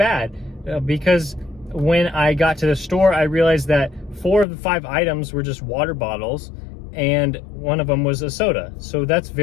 because when I got to the store, I realized that 4 of the 5 items were just water bottles, and one of them was a soda. So that's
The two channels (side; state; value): right; drops out; at 4.5 s